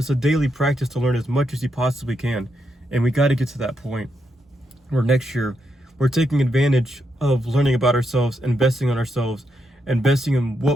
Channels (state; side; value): normal; both; correlation 0.81